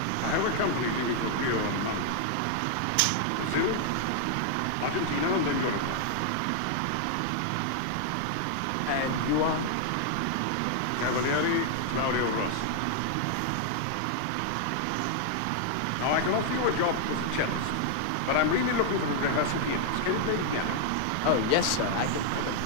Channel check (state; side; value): different; both; correlation 0.00